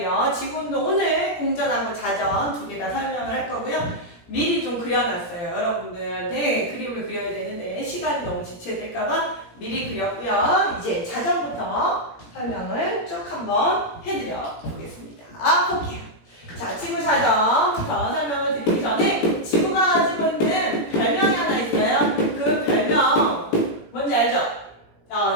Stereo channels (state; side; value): late; right; 17 ms